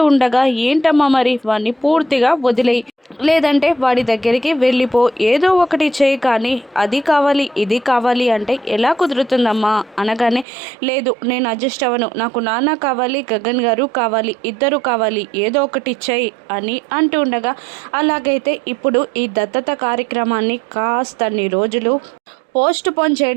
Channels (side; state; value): left; drops out; at 10.5 s